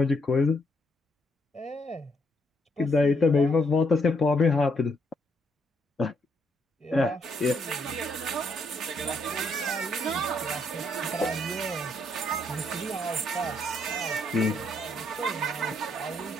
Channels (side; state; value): both; normal; correlation 0.74